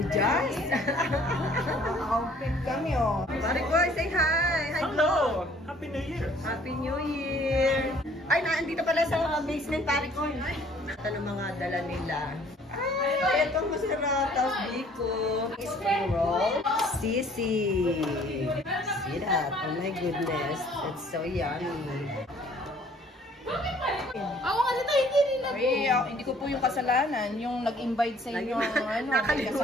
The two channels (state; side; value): normal; both; correlation 0.57